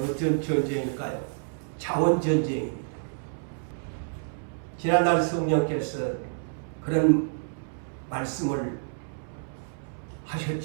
전쟁일까요? 자원전쟁입니다. 지난날 성령께서 그런 말씀을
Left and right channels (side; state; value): left; silent; 59 dB below the other